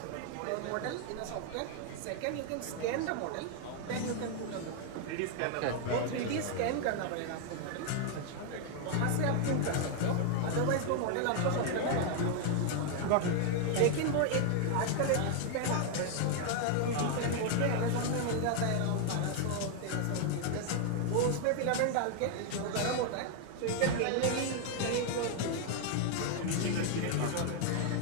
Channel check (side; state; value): both; different; correlation 0.00